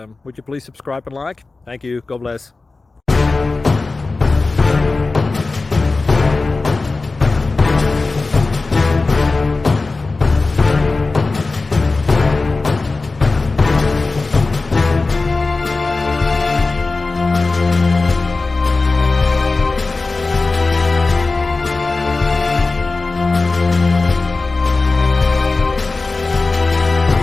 would you please subscribe and like? Thank you. God bless.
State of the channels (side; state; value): right; quieter; 3.6 dB